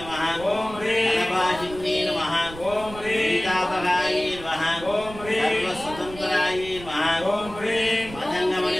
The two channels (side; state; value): right; noise; rumble, 15 dB below the sound